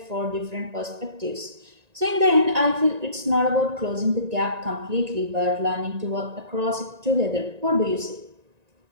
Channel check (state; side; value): late; left; 1.9 ms